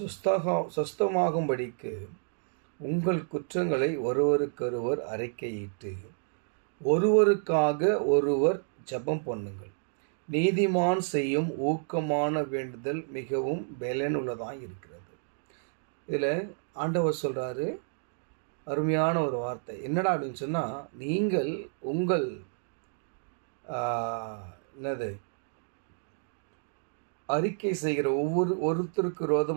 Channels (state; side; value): silent; left; digital silence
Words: சொஸ்தமாகும்படிக்கு உங்கள் குற்றங்களை ஒருவருக்கொருவர் அறிக்கையிட்டு ஒருவருக்காக ஒருவர் ஜெபம் பண்ணுங்கள். நீதிமான் செய்யும் ஊக்கமான வேண்டுதல் மிகவும் பலனுள்ளதாக இருக்கிறது. இதில் ஆண்டவர் சொல்கிறாரு, அருமையான ஒரு வார்த்தை. என்னடா அப்படின்னு சொன்னால், நீங்கள் உங்கள் அறிக்கை செய்கிற ஒருத்தருக்கு